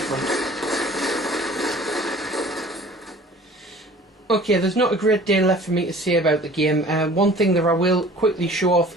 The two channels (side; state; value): both; normal; correlation 0.47